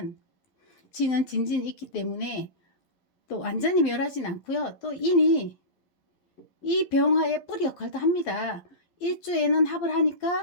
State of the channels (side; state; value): right; late; 11 ms